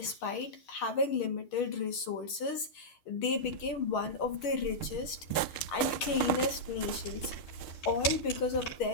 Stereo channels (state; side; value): late; right; 6.6 ms